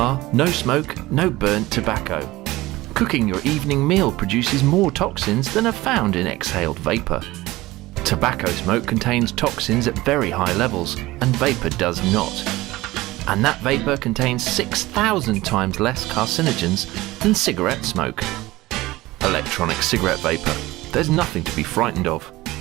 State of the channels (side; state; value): left; quieter; 18.8 dB